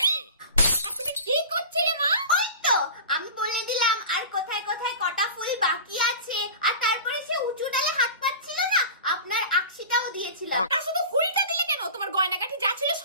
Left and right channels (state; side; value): inverted; both; correlation -0.34